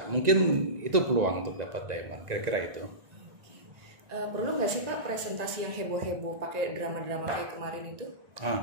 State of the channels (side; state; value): left; late; 1.9 ms